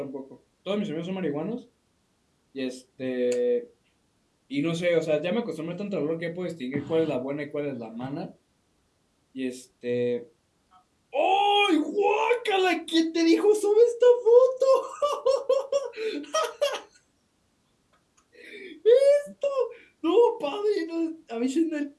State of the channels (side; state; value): both; identical; correlation 1.00